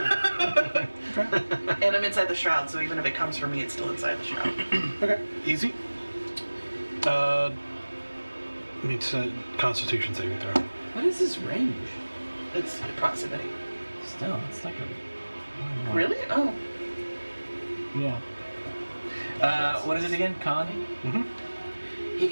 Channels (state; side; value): inverted; both; correlation -1.00